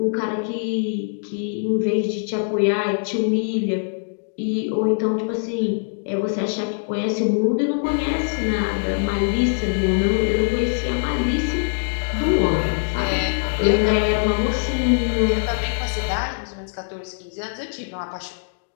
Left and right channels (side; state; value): right; silent; digital silence